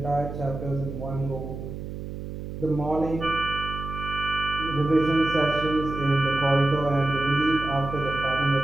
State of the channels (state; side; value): noise; right; hum, 8 dB below the sound